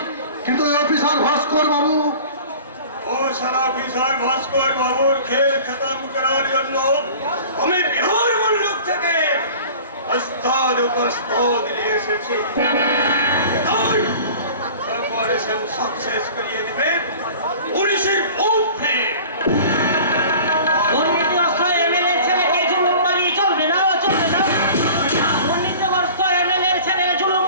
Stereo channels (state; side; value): inverted; both; correlation -0.42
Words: কিন্তু ওই অফিসার ভাস্কর বাবু, ও সারা অফিসার ভাস্কর বাবুর খেল খতম করার জন্য আমি বিহার মুল্লুক থেকে ওস্তাদ উপস্তাদ নিয়ে এসেছি। অপারেশন সাকসেস করিয়ে দেবে পুলিশের ওপরে। দুর্নীতিগ্রস্ত এমএলএ ছেলেকে জুলুমবাজি চলবে না, চলবে না। দুর্নীতিগ্রস্ত এমএলএ ছেলে